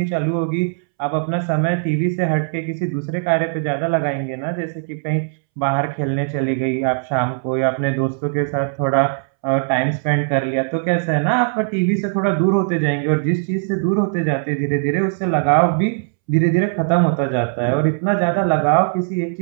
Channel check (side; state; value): left; silent; 66 dB below the other